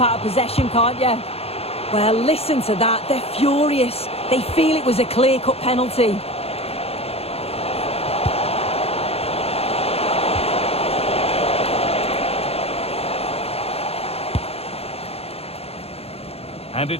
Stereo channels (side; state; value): right; late; 0.29 ms